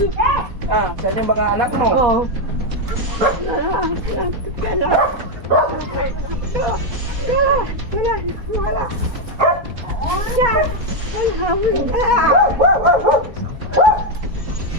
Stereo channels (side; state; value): left; late; 4.2 ms